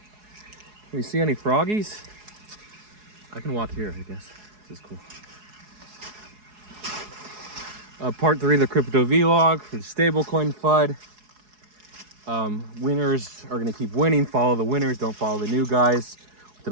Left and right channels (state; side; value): late; left; 4.7 ms